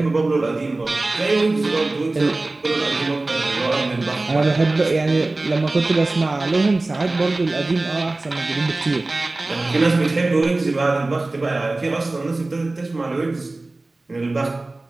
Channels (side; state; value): left; quieter; 3.1 dB